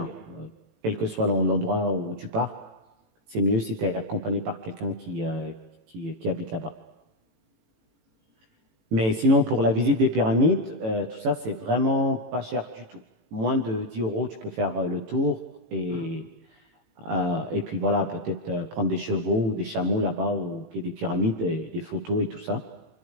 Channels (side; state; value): left; late; 18 ms